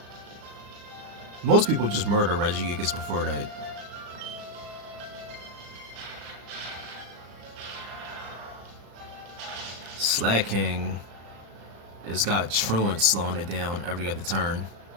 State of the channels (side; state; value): left; late; 35 ms